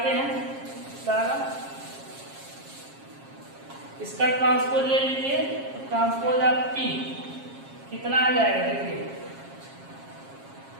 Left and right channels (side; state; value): left; late; 7.4 ms